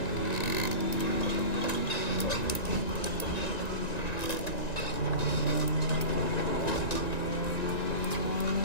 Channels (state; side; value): late; right; 1.9 ms